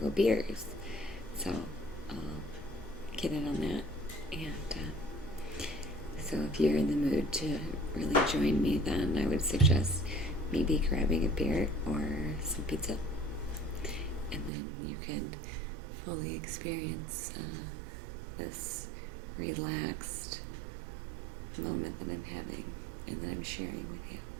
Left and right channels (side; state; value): left; drops out; at 14.5 s